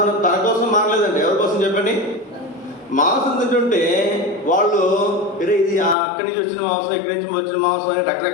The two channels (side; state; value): right; drops out; at 6.0 s